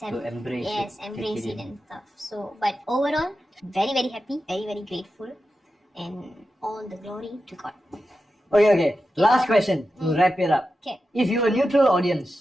to embrace embrace it and stuff. So but overall, very very happy, very very grateful, and all the glory to God. Okay, last question to wrap it up. Okay, if you were neutral audience,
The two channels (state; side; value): normal; both; correlation 0.91